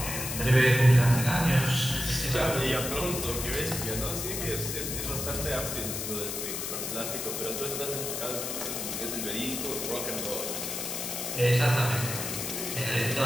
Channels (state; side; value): noise; left; hiss, 4 dB below the sound